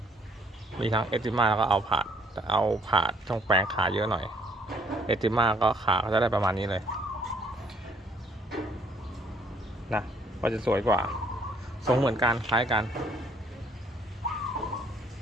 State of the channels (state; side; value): normal; both; correlation 0.64